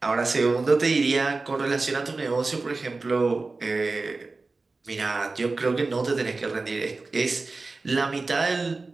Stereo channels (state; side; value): quieter; left; 3.7 dB